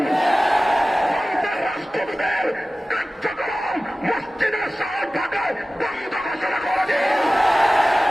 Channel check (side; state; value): both; normal; correlation 0.96